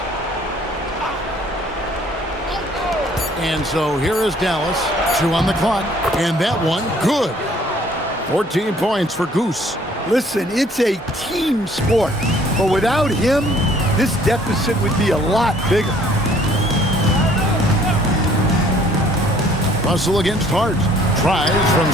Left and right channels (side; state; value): both; normal; correlation 0.59